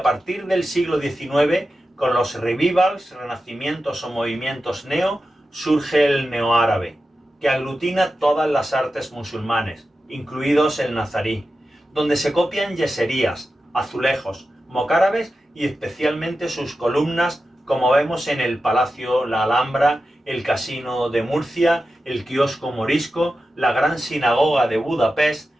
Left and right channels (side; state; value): both; normal; correlation 0.92